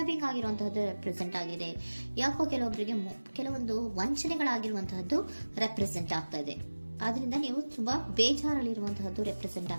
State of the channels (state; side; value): inverted; both; correlation -1.00